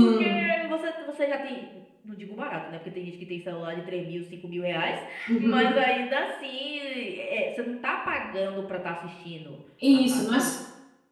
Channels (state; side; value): identical; both; correlation 1.00